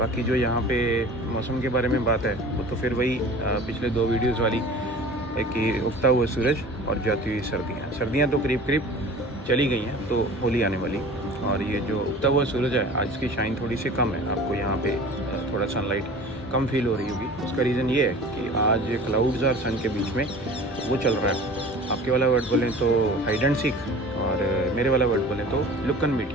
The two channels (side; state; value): both; normal; correlation 0.41